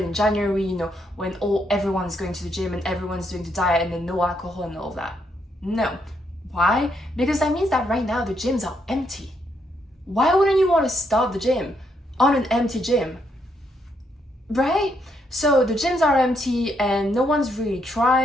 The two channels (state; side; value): normal; both; correlation 0.76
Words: in January, you know, when everyone's going to the gym and everyone's doing the diet and then no alcohol and all of that. No. Why? Because that means that right now the gyms are empty. Why wouldn't you want to start the gym on an empty gym? Right? So the gyms are empty and no one's really